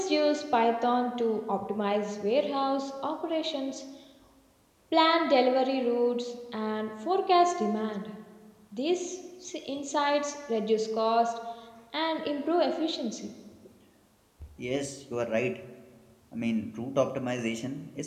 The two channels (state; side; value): identical; both; correlation 1.00